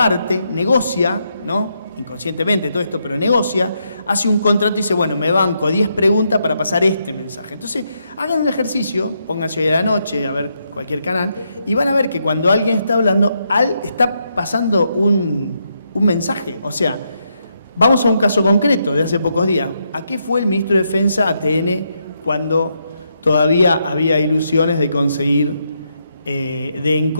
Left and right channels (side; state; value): both; inverted; correlation -0.80